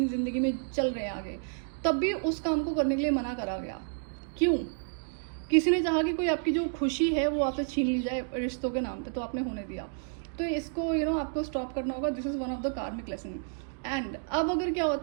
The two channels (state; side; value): silent; left; 58 dB below the other